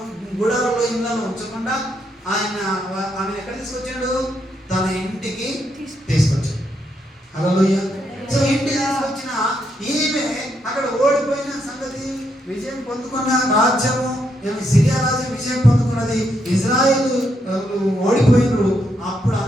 గుడారంలో ఇళ్ళను ఉంచకుండా ఆమె ఎక్కడ తీసుకొచ్చాడు? తన ఇంటికి తీసుకొచ్చాడు. హల్లెలూయా. సో ఇంటికి తీసుకొచ్చిన ఈమె అక్కడ ఓడిపోయిన సంగతి, విజయం పొందుకున్న రాజ్యము, సిరియా రాజ్యం విజయం పొందుకున్నది, ఇజ్రాయేలు ఓడిపోయినరు. అప్పుడు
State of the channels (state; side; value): normal; both; correlation 0.78